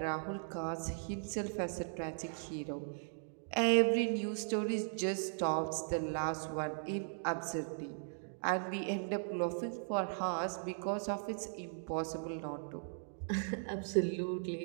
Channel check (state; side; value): silent; left; digital silence